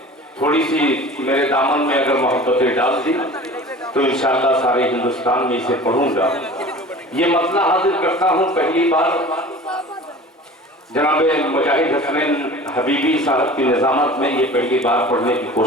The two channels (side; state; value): both; normal; correlation 0.40